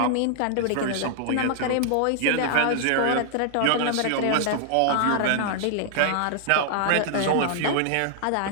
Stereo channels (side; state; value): both; different; correlation -0.01